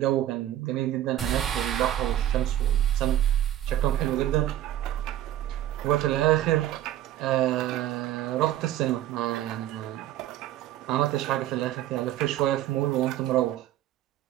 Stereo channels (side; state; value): left; quieter; 12.8 dB